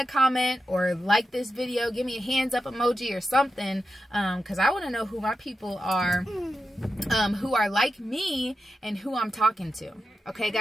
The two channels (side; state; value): both; normal; correlation 0.89